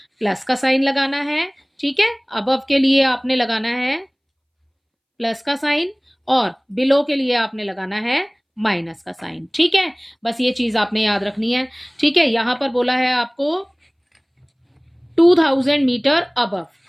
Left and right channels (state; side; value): identical; both; correlation 1.00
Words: प्लस का साइन लगाना है, ठीक है। अबव के लिए आपने लगाना है प्लस का साइन और बिलो के लिए आपने लगाना है माइनस का साइन, ठीक है। बस ये चीज आपने याद रखनी है, ठीक है। यहां पर बोला है आपको 2000 मीटर अबव,